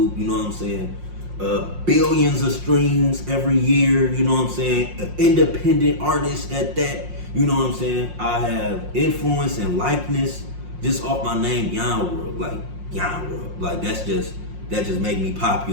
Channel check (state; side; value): late; left; 5.6 ms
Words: you know what I'm saying? Billions of streams every year, you know what I'm saying? An independent artist at that, you know what I'm saying? I have influence and likeness just off my name, Yon World, like Yon World. Like, that just make me